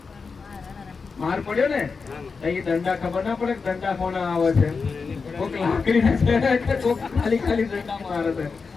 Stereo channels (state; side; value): quieter; right; 4.9 dB